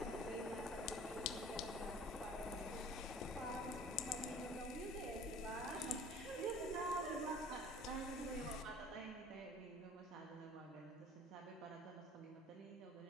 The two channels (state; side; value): normal; both; correlation 0.48